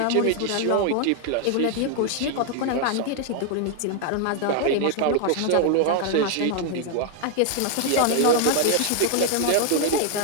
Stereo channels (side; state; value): both; different; correlation 0.00